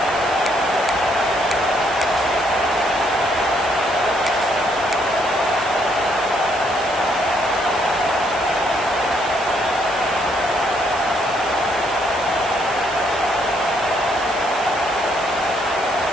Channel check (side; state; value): right; noise; hiss, 16 dB below the sound